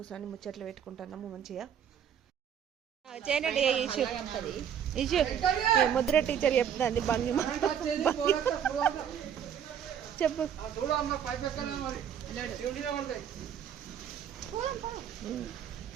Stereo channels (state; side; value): quieter; left; 8.7 dB